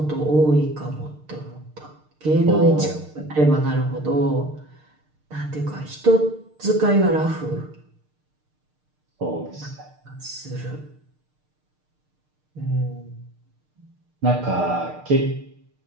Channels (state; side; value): late; left; 6.6 ms